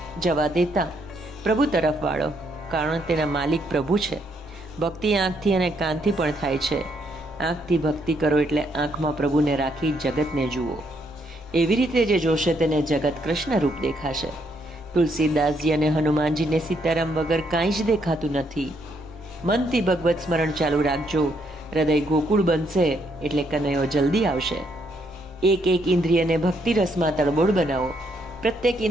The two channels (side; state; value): both; normal; correlation 0.73